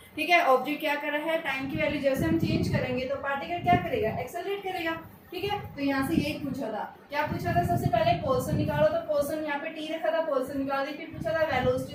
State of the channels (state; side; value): identical; both; correlation 1.00